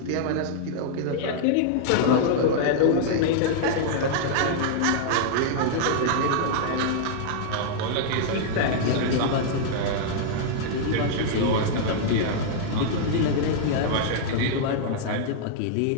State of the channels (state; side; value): different; both; correlation -0.01